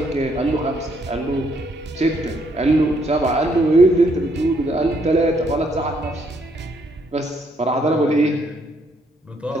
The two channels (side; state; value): both; normal; correlation 0.71